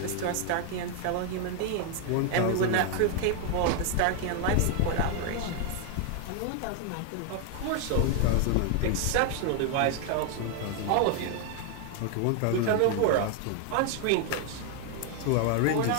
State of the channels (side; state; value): both; different; correlation 0.00